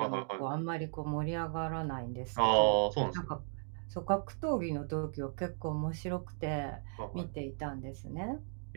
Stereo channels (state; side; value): silent; left; 54 dB below the other